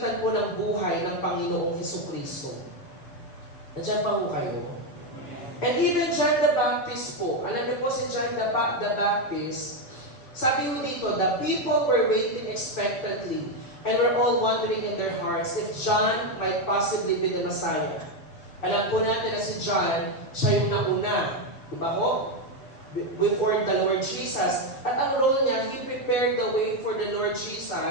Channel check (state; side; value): late; right; 7.9 ms